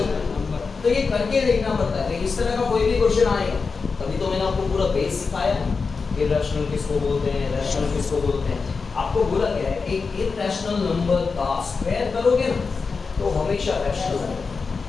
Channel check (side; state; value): right; quieter; 4.8 dB